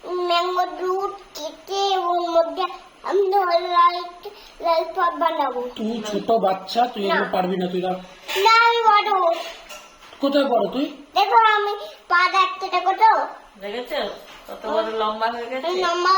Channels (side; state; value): both; identical; correlation 1.00